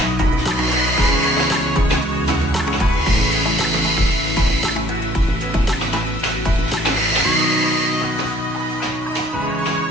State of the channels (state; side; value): normal; both; correlation 0.57